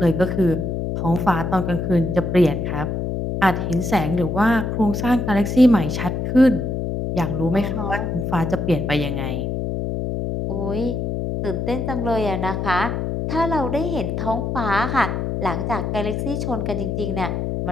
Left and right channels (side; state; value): left; noise; hum, 2 dB below the sound